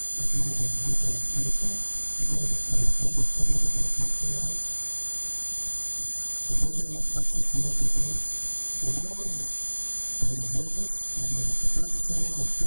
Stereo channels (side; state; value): both; inverted; correlation -1.00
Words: because of what he has gone through, having been deprived of liberty for the past 2 years. He doesn't have access to any documents. He was in his office or in the capacity where he